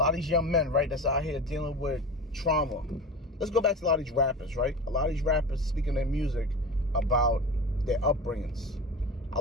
of these young men, right, that's out here dealing with trauma. Let's go back to a lot of these rappers, right? A lot of these rappers speaking their music about their upbringings. I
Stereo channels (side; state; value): both; normal; correlation 0.30